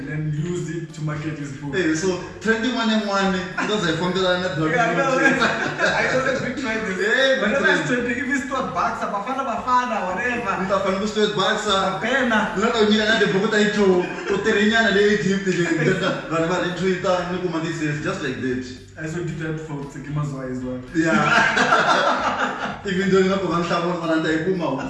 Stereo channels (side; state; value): both; identical; correlation 1.00